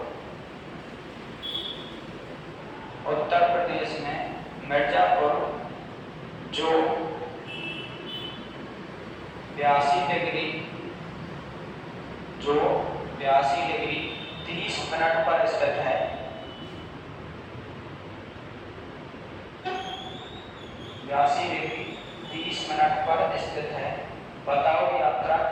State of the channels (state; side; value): identical; both; correlation 1.00